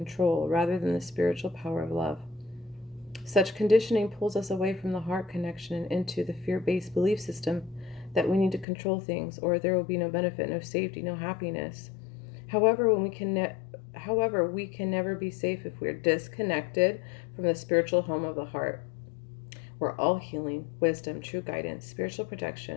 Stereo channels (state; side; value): drops out; right; at 8.7 s